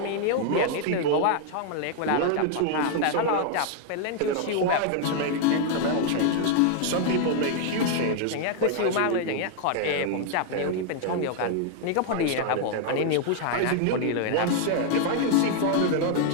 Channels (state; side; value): different; both; correlation 0.00